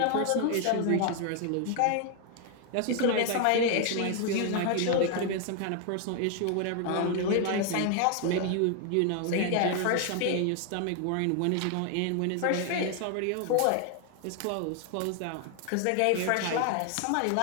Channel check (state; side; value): different; both; correlation 0.00